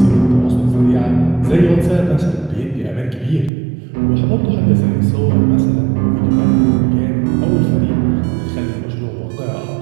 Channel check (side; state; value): left; drops out; at 3.5 s